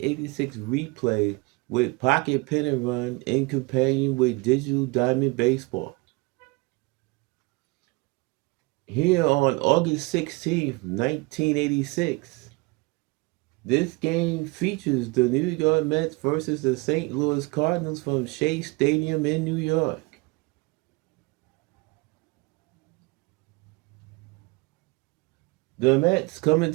replay with Pocket Pennant Run in companion with Digital Diamond Baseball. Here on August 16th, 1986, this game features the New York Mets versus the St. Louis Cardinals from Shea Stadium in New York. The Mets come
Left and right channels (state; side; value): quieter; left; 25.6 dB